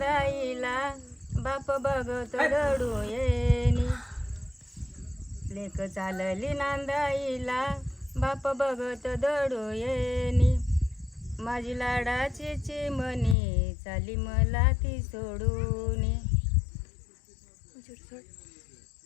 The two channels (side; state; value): right; drops out; at 13.4 s